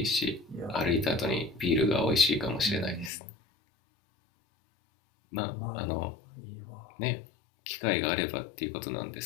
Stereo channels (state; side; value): drops out; right; at 3.1 s